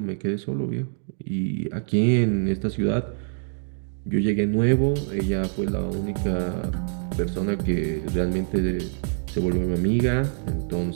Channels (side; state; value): left; silent; 62 dB below the other